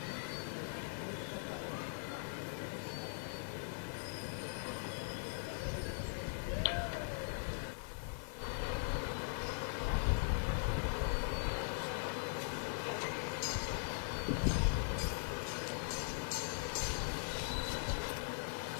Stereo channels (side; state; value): right; silent; digital silence